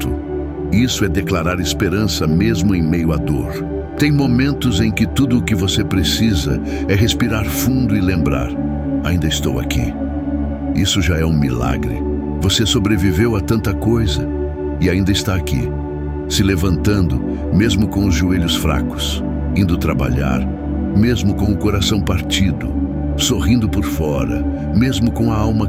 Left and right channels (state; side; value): identical; both; correlation 1.00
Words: Isso é declarar esperança mesmo em meio à dor. Tem momentos em que tudo o que você precisa é respirar fundo e lembrar: ainda estou aqui. Isso já é um milagre. Você sobreviveu a tanta coisa e ainda está aqui, se levantando, mesmo com os joelhos fracos, indo trabalhar, mesmo com o coração partido, sorrindo por fora, mesmo com a alma